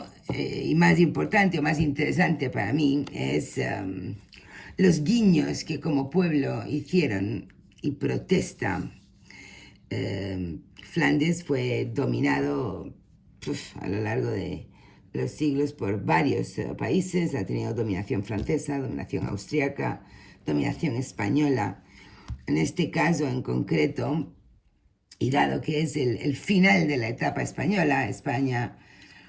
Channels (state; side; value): identical; both; correlation 1.00